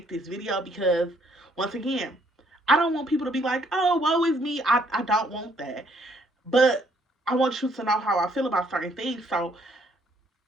this video, because once again, I don't want people to be like, oh, woe is me. I don't want that. But I want you to know how I feel about certain things. So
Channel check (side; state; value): both; normal; correlation 0.67